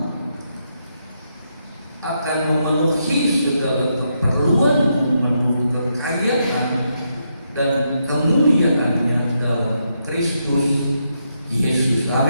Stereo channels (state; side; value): inverted; both; correlation -0.80